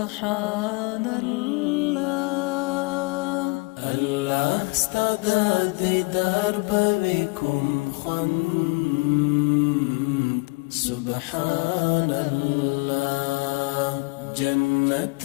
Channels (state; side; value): quieter; right; 27.5 dB